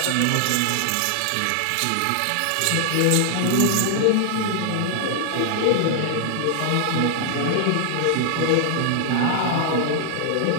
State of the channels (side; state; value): both; different; correlation 0.00